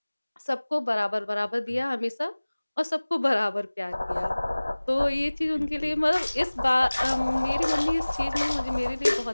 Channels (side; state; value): both; inverted; correlation -1.00